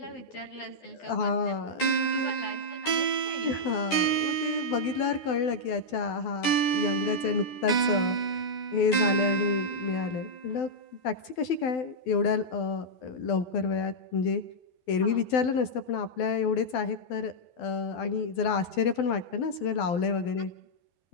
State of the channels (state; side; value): late; right; 12 ms